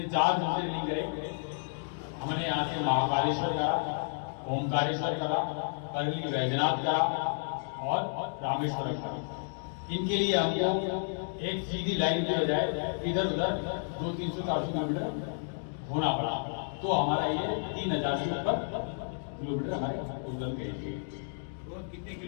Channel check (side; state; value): right; silent; digital silence